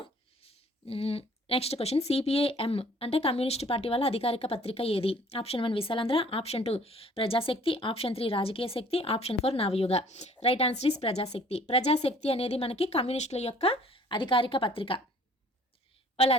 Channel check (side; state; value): both; normal; correlation 0.55